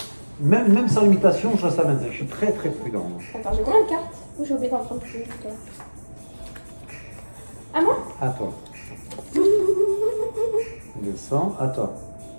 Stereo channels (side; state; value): both; inverted; correlation -1.00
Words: même sans limitation, ça m'intéresse. Je suis très très prudent. Attends, j'ai combien de cartes? Ou j'ai oublié d'en prendre plus? À moi? À toi. Descends, à toi.